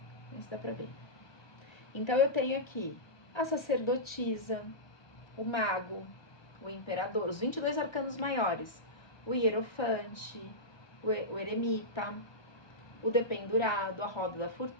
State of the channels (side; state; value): right; late; 1.2 ms